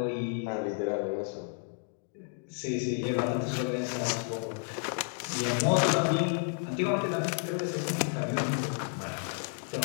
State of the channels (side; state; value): right; silent; 57 dB below the other